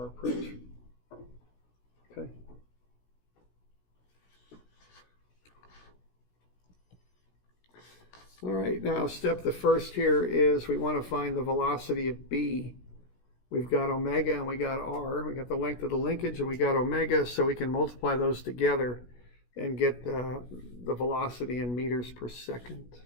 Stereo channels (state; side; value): late; right; 16 ms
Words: approach. Okay. All right, now the first here is we want to find the velocity of B. We've got omega and we got r. We got the length of the linkage and we got omega, so we can multiply those together and get the velocity in meters per second.